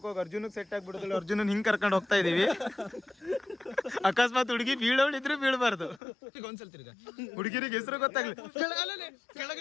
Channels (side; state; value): right; drops out; at 6.0 s